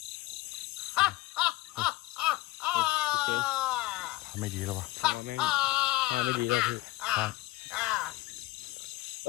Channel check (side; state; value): right; quieter; 18.7 dB